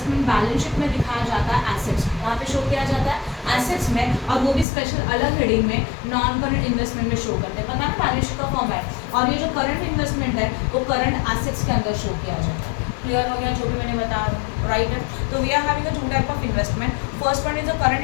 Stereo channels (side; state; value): right; drops out; at 4.7 s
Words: balance sheet में दिखाया जाता है एसेट्स, वहाँ पे शो किया जाता है एसेट्स में, और वो भी स्पेशल अलग हेडिंग में नॉन करंट इन्वेस्टमेंट में शो करते हैं। पता है बैलेंस शीट का फॉर्मेट, और ये जो करंट इन्वेस्टमेंट है वो करंट एसेट्स के अंदर शो किया जाता है। क्लियर हो गया जो भी मैंने बताया, राइट है। तो we are having a 2 type of investment. First one is a current